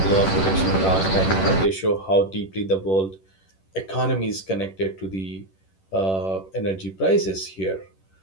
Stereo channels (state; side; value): late; right; 10 ms